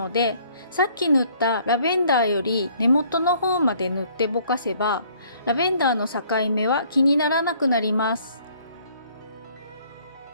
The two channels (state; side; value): inverted; both; correlation -0.60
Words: で、さっき塗ったラベンダーより根元の方まで塗ってぼかせば、ラベンダーの境目は気にならなくなります。